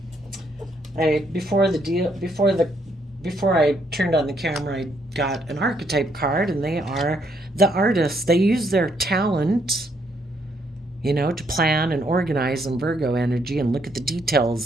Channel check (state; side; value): normal; both; correlation 0.72